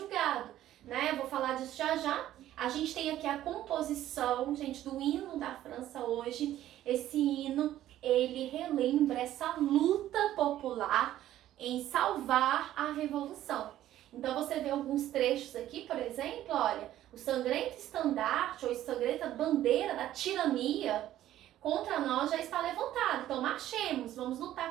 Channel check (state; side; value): quieter; left; 13.0 dB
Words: né? Eu vou falar disso já já. A gente tem aqui a composição, gente, do hino da França hoje. Esse hino, ele relembra essa luta popular em salvar a revolução. Então você vê alguns trechos aqui, por exemplo, olha, o sangrento estandarte ou sangrenta bandeira da tirania contra nós já está levantado. Então marchemos, vamos